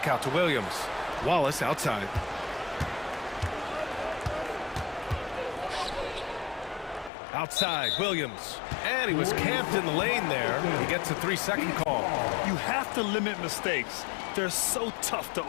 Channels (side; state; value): right; drops out; at 7.1 s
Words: out to Williams. Wallace outside. Outside, Williams. And he was camped in the lane there. He gets a 3-second call. You have to limit mistakes. They're so tough to